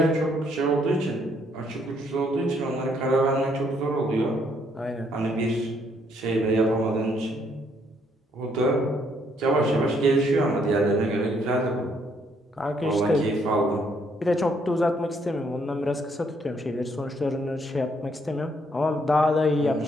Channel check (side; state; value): both; normal; correlation 0.70